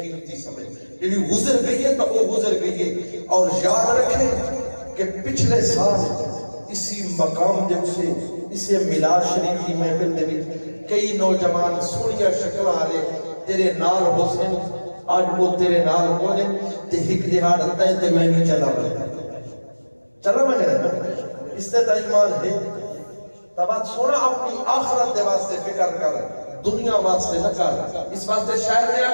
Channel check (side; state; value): both; inverted; correlation -1.00